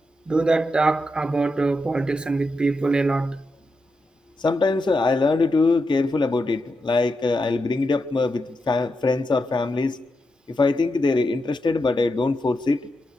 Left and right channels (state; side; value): normal; both; correlation 0.86